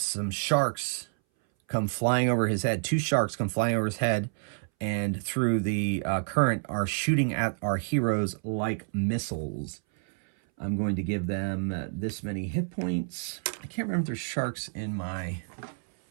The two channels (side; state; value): left; silent; 59 dB below the other